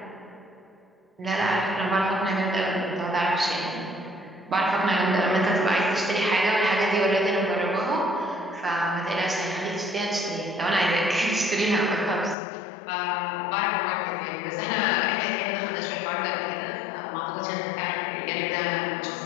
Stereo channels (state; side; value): drops out; right; at 12.4 s